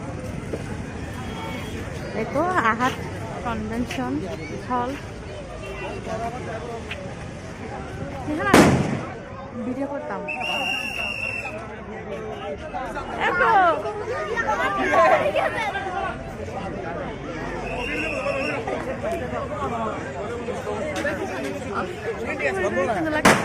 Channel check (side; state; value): both; identical; correlation 1.00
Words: এই তো আহাত কনভেনশন হল। ভিডিও করতাম।